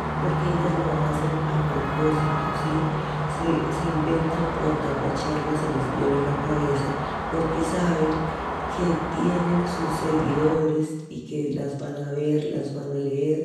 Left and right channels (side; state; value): both; identical; correlation 1.00